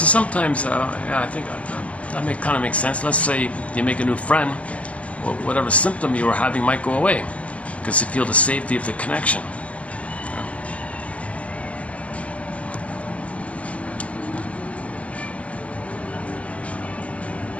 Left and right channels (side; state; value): right; late; 0.064 ms